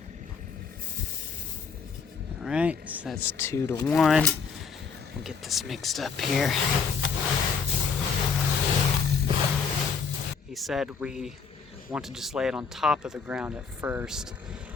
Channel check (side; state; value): right; quieter; 5.9 dB